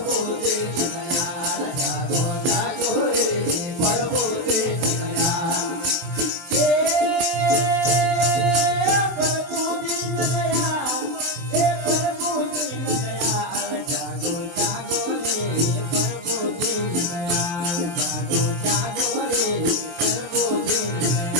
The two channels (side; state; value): left; late; 23 ms